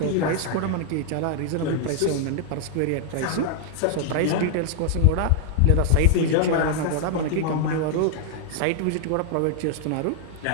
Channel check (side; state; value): both; different; correlation 0.00